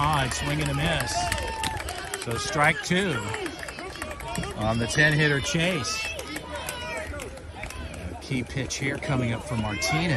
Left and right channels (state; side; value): identical; both; correlation 1.00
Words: Swing and a miss. So strike 2 on the 10 hitter Chase. A key pitch here coming up for